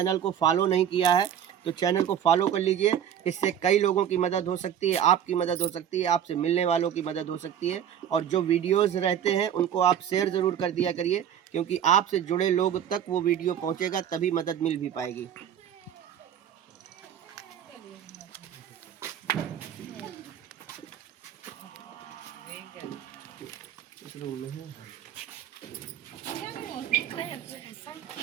को फॉलो नहीं किया है तो चैनल को फॉलो कर लीजिए। इससे कई लोगों की मदद हो सकती है, आपकी मदद हो सकती है, आपसे मिलने वालों की मदद हो सकती है। और जो वीडियोस रहते हैं उनको आप शेयर ज़रूर कर दिया करिए, क्योंकि आपसे जुड़े लोग तक वो वीडियो पहुंचेगा, तभी मदद मिल भी पाएगी। इस रूम में है।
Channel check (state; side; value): quieter; left; 9.4 dB